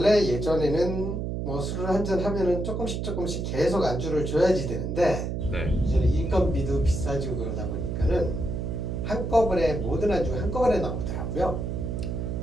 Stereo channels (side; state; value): right; noise; hum, 3 dB below the sound